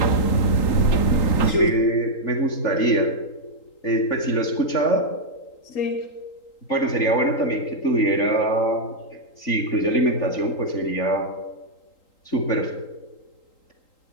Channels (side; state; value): right; late; 3.8 ms